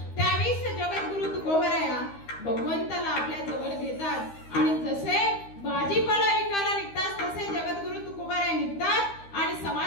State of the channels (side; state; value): right; late; 13 ms